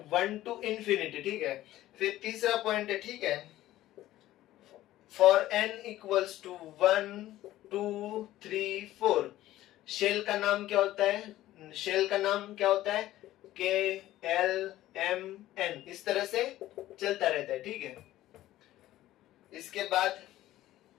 1 टू इंफिनिटी, ठीक है। फिर तीसरा पॉइंट है, ठीक है, for n equals to 1 2 3 4, shell का नाम क्या होता है, शेल का नाम क्या होता है, KLMN, इस तरह से चलता रहता है, ठीक है। इसके बाद,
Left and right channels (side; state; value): right; quieter; 14.8 dB